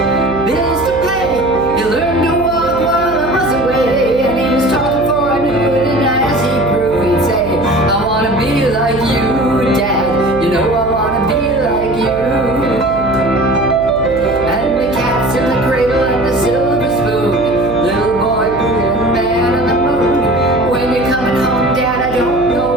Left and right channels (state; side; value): noise; right; hum, 12 dB below the sound